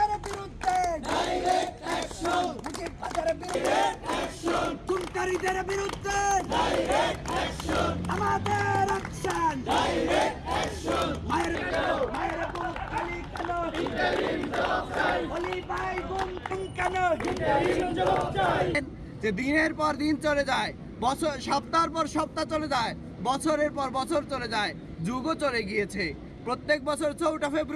বিরুদ্ধে ডাইরেক্ট অ্যাকশন, মুজিববাদের বিরুদ্ধে অ্যাকশন, খুনকারীদের বিরুদ্ধে ডাইরেক্ট অ্যাকশন, আমাদের অ্যাকশন, ডাইরেক্ট অ্যাকশন। মায়ের বুক খালি কেন, ইন্টারিম জবাব চাই, বলি ভাই গুম কেন, ইন্টারিম জবাব চাই। যে দিনের পর দিন চলে যায়, বছর সপ্তাহের পর সপ্তাহ চলে যায়, বছরের পর বছর চলে যায়, যুগও চলে গিয়েছে। প্রত্যেক বছর 4টা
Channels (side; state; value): both; identical; correlation 1.00